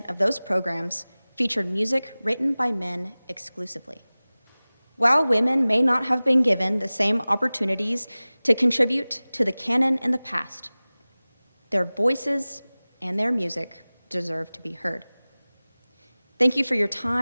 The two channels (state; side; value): inverted; both; correlation -0.99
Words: of those programs featured music written by men exclusively. While women may not have been given the same opportunities to contribute to the canon in the past, their voices and their music deserve to be heard. Thank you for your